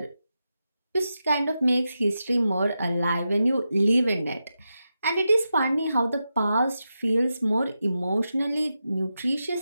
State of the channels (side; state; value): both; inverted; correlation -0.89